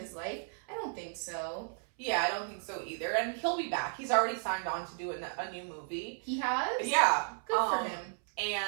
life. I don't think so. Yeah, I don't think so either. And he'll be back. He's already signed on to do a new movie. He has? Yeah. Good for him.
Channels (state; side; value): silent; left; 55 dB below the other